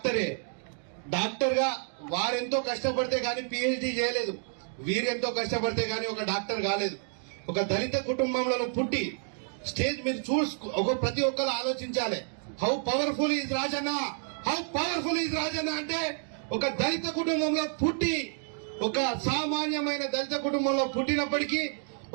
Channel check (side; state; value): left; silent; 58 dB below the other